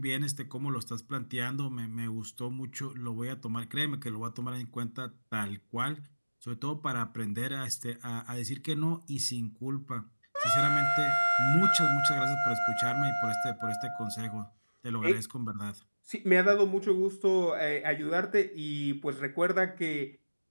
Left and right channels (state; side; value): inverted; both; correlation -1.00